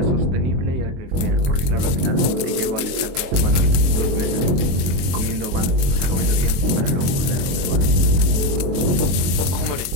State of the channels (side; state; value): left; late; 22 ms